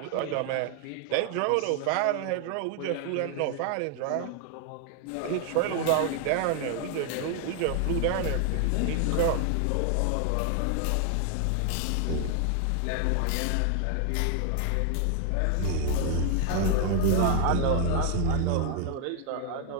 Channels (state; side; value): different; both; correlation 0.00